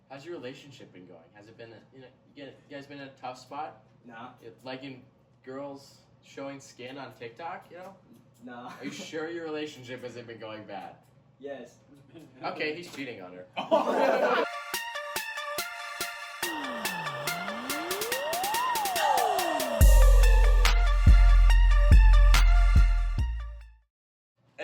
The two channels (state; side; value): identical; both; correlation 1.00